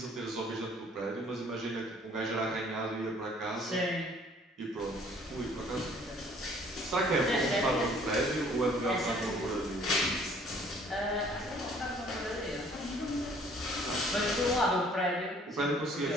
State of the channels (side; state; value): both; normal; correlation 0.57